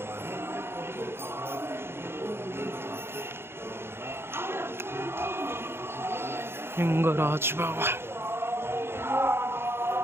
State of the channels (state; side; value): late; left; 0.11 ms